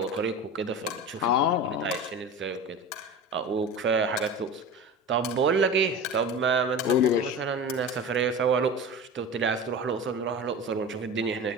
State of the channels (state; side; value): normal; both; correlation 0.31